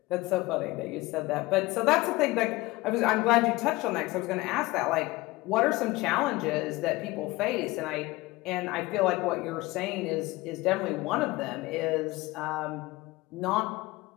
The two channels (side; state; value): right; quieter; 20.8 dB